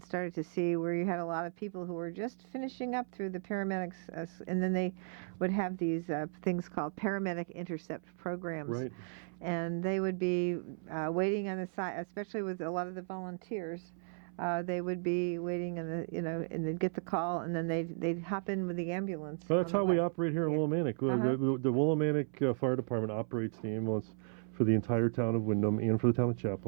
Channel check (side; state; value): left; silent; 54 dB below the other